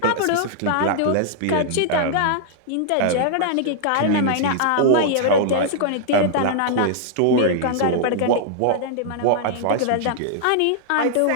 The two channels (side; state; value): both; different; correlation -0.01